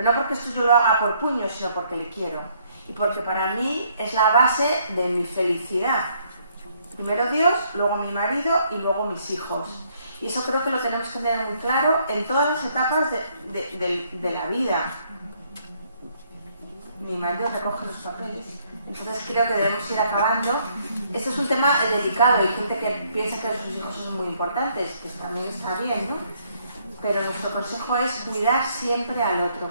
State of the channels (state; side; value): inverted; both; correlation -0.68